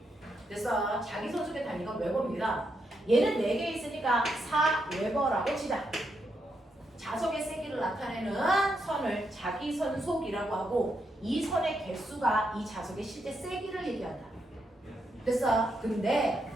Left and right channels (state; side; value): normal; both; correlation 0.81